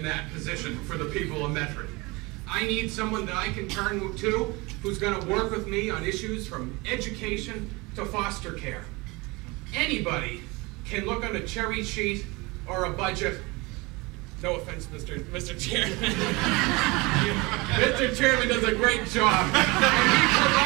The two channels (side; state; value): left; quieter; 24.7 dB